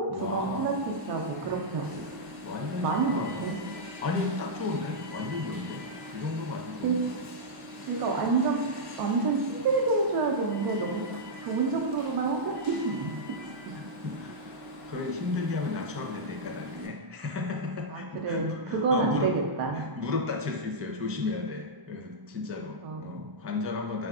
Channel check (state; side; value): late; left; 1.0 ms